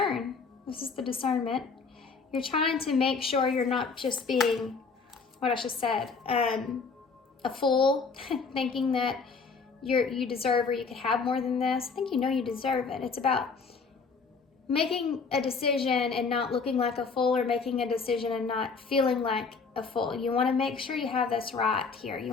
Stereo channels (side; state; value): right; quieter; 4.9 dB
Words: This is the discernment. You're trying to make sure you're not just being, what I just said, a fool, thinking that you deserve or you could have more than this. I think you know you deserve it. It's about making a decision and not looking like a fool, or making a decision and not feeling like a fool. You want to make sure you have this right here. You